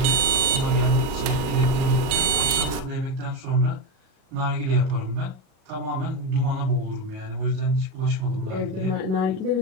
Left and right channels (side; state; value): left; late; 38 ms